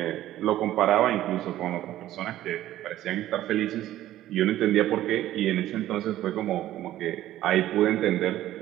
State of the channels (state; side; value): quieter; left; 13.8 dB